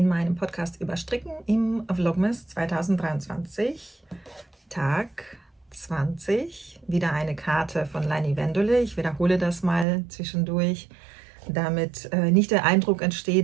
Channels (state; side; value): drops out; left; at 9.9 s